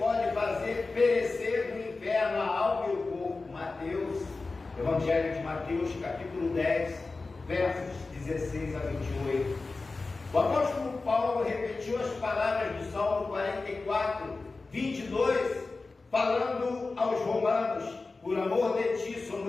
fazer perecer no inferno a alma e o corpo. Mateus, Evangelho de Mateus, capítulo 10, versos 16 a 28. O apóstolo Paulo repetiu as palavras do Salmo 44, 22, falando aos romanos: por amor de ti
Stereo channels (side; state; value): right; quieter; 3.7 dB